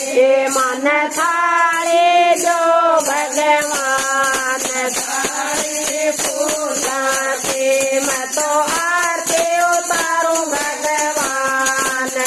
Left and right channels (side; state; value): both; identical; correlation 1.00